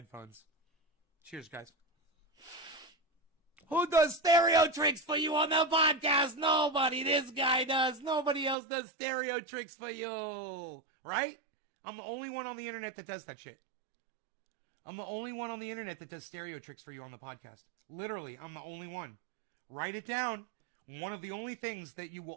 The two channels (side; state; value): left; drops out; at 8.6 s